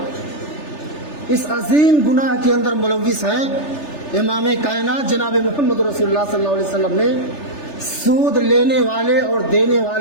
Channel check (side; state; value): right; late; 3.4 ms